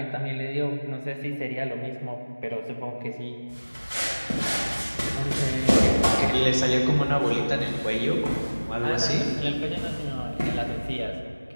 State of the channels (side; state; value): both; inverted; correlation -1.00